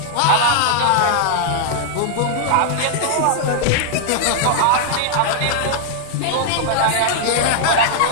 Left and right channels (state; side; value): different; both; correlation -0.01